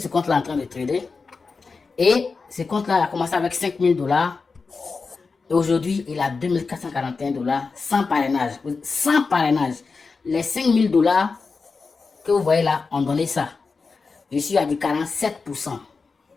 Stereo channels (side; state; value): right; quieter; 4.5 dB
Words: compte-là est en train de trader. Et ce compte-là a commencé avec 5 000 $. Et aujourd'hui, il a 2 441 $ sans parrainage. Sans parrainage. Les 5 000 $ que vous voyez là ont donné ça. Je suis à du 47%.